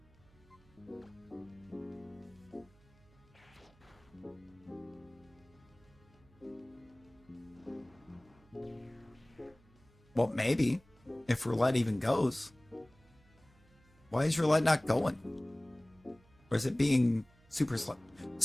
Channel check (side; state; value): right; noise; hum, 29 dB below the sound